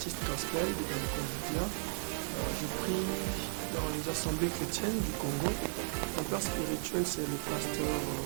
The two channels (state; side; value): silent; left; digital silence